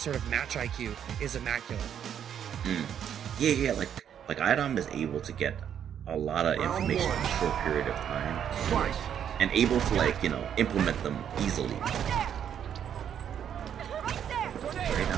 of match IQ is immaculate. Yeah, like iDom is able to get a lot of information in a short period of time, and able to, like, you know, implement them easily. Right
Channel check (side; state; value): left; quieter; 9.0 dB